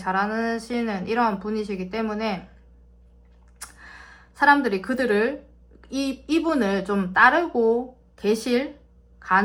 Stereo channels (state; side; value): identical; both; correlation 1.00